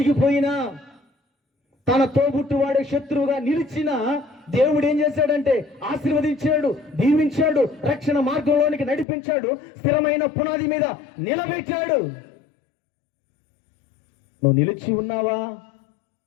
తన తోబుట్టువాడే శత్రువుగా నిలిచినా దేవుడు ఏం చేశాడంటే ఆశీర్వదించాడు, దీవించాడు, రక్షణ మార్గంలోనికి నడిపించాడు, స్థిరమైన పునాది మీద నిలబెట్టాడు. నువ్వు నిలిచి ఉన్నావా?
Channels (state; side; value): drops out; right; at 9.1 s